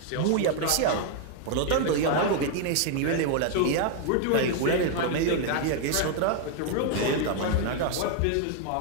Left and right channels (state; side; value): different; both; correlation 0.00